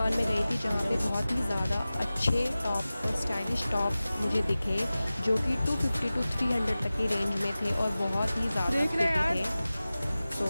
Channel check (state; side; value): inverted; both; correlation -0.96